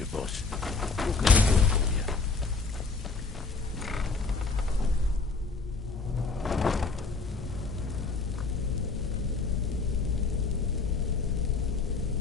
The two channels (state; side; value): quieter; right; 4.1 dB